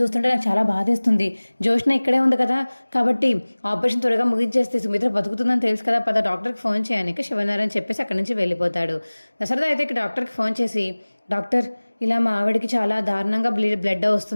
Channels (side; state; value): both; inverted; correlation -1.00